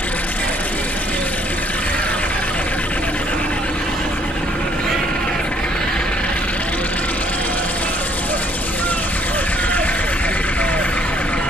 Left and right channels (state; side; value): normal; both; correlation 0.65